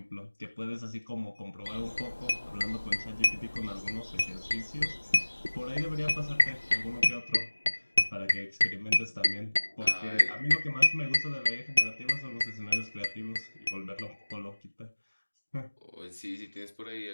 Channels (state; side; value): inverted; both; correlation -1.00